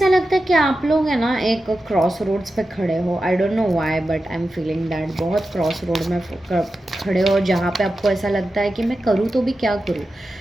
लगता है कि आप लोग है ना एक क्रॉस रोड्स पे खड़े हो, आई don't know why but I am feeling that, बहुत क्रॉस रोड में खड़े हो, जहाँ पे आपको ऐसा लगता है कि मैं करूँ तो भी क्या करूँ,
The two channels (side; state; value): both; normal; correlation 0.92